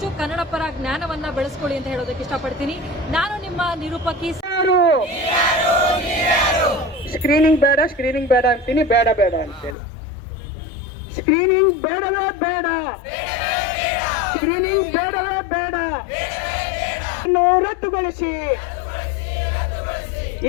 ಕನ್ನಡ ಪರ ಜ್ಞಾನವನ್ನ ಬೆಳೆಸ್ಕೊಳ್ಳಿ ಅಂತ ಹೇಳೋದಕ್ಕೆ ಇಷ್ಟಪಡ್ತೀನಿ. ನಾನು ನಿಮ್ಮ ನಿರೂಪಕಿ. ಸ್ಕ್ರೀನಿಂಗ್ ಬೇಡ ಅಂತೀನಿ, ಬೇಡ ಅಂತೇಳಿ. ಸ್ಕ್ರೀನಿಂಗ್ ಬೇಡವೇ ಬೇಡ, ಸ್ಕ್ರೀನಿಂಗ್ ಬೇಡವೇ ಬೇಡ, ರದ್ದುಗೊಳಿಸಿ.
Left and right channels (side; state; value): right; drops out; at 9.8 s